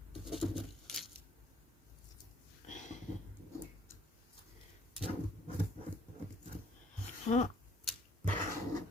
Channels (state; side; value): normal; both; correlation 0.62